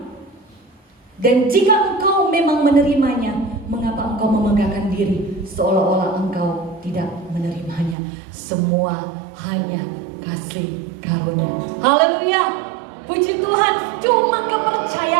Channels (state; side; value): drops out; left; at 8.0 s